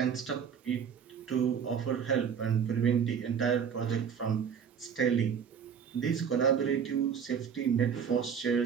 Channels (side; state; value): left; quieter; 7.4 dB